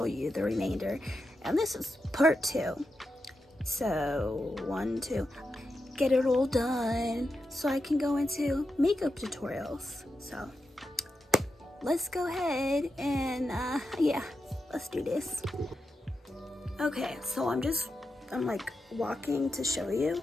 you the remainder. And this is part 2. So, 1, 2. Get it all done so I can go into makeup tutorials. So, let's go ahead and let's do this. Okay, so I'm like walking to show you.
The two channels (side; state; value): both; normal; correlation 0.88